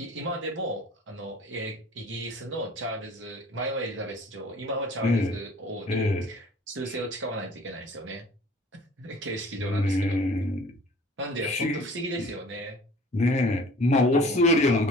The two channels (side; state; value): both; normal; correlation 0.49